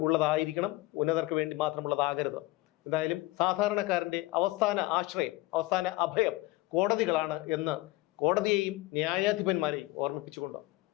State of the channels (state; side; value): quieter; right; 19.6 dB